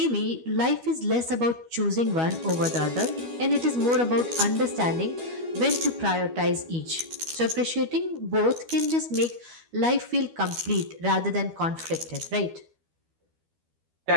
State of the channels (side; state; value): left; late; 12 ms